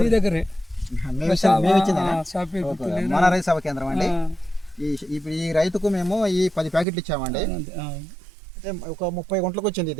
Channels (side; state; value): left; drops out; at 6.9 s